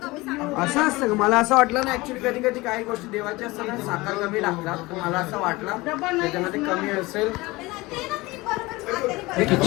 असं असतं का मला असं वाटलं ना ऍक्च्युली कधी काही गोष्टी देवाच्या असतात ना साखर कमी लागतात मला असं वाटलं त्याच्यामध्ये कमी असेल.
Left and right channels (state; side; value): quieter; right; 21.6 dB